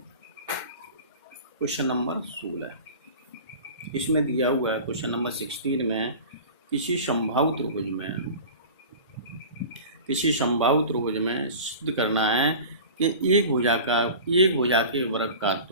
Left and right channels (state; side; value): inverted; both; correlation -0.36